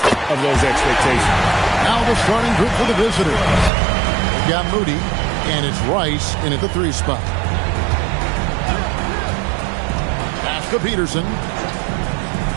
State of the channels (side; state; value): left; drops out; at 3.7 s